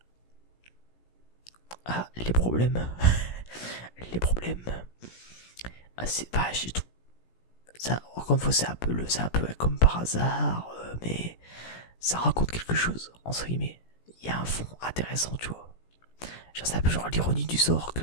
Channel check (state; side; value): late; right; 17 ms